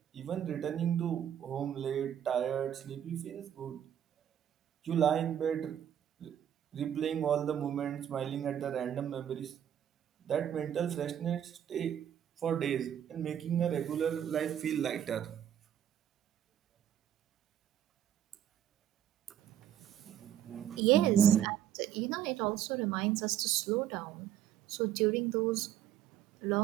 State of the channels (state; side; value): quieter; left; 10.3 dB